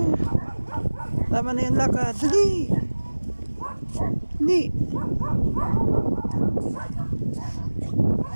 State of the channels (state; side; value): inverted; both; correlation -1.00